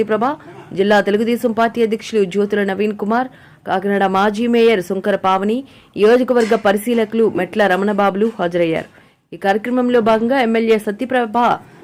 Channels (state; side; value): identical; both; correlation 1.00